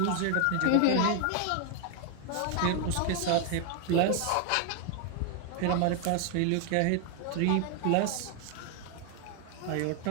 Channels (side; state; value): both; different; correlation 0.00